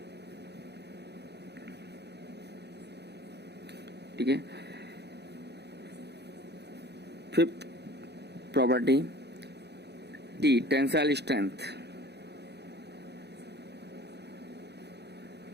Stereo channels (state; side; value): late; left; 0.49 ms